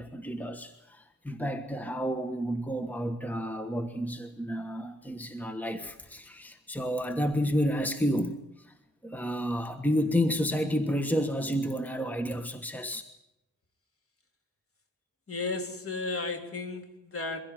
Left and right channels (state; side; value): normal; both; correlation 0.72